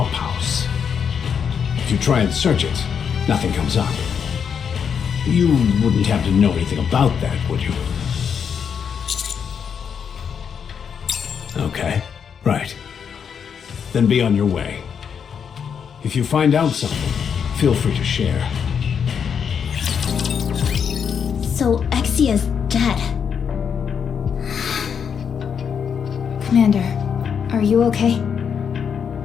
If you try and search it, nothing comes up. You wouldn't have to know anything about that, would you? Okay, right. Then be on your way. If you find out something, feel free to share. So Exia's dead. Commander, are you okay?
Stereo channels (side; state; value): right; quieter; 7.2 dB